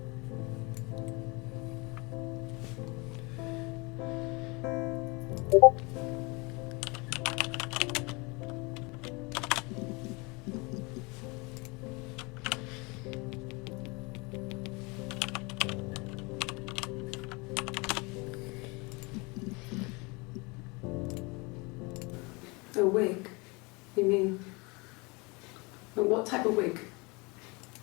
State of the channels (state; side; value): quieter; right; 27.6 dB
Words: A wig? You mean... What type of wig?